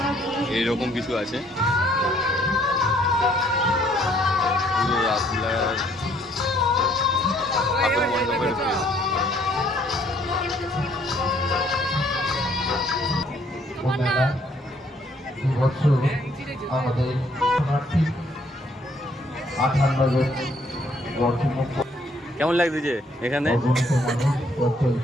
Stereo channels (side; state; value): both; normal; correlation 0.65